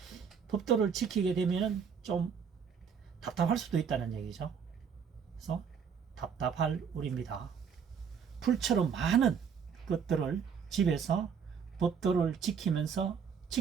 법도를 지키게 되면 좀 답답할 수도 있다는 얘기죠. 그래서 답답할 우리입니다. 풀처럼 많은 것들을 집에서 법도를 지키면서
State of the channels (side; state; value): left; quieter; 6.8 dB